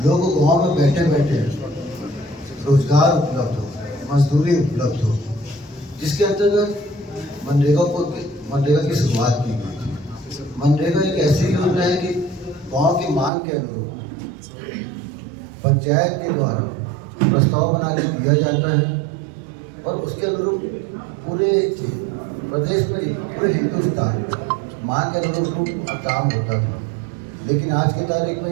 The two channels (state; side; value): drops out; left; at 13.3 s